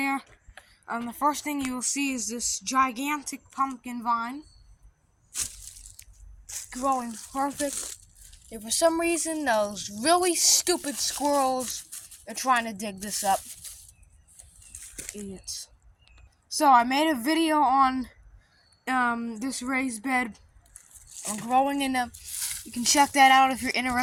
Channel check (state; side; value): identical; both; correlation 1.00